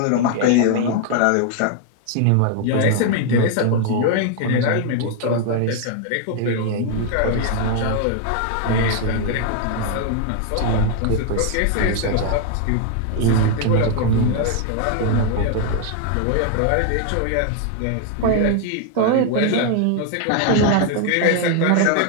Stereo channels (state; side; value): different; both; correlation 0.00